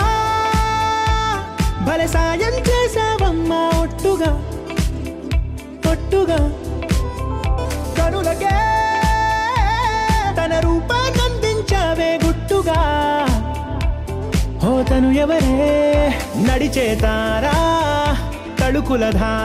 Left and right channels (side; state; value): both; identical; correlation 1.00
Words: భలే సాయం చేసావమ్మా ఒట్టుగా ఒట్టుగా కనులకే తన రూపాన్నందించావే గుట్టుగా ఓ తను ఎవరే నడిచే తారా తళుకుల